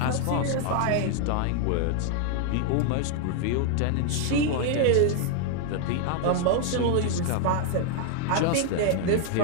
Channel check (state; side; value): different; both; correlation 0.00